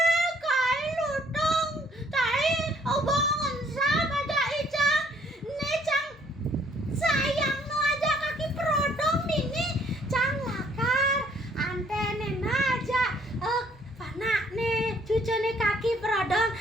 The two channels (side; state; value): both; normal; correlation 0.63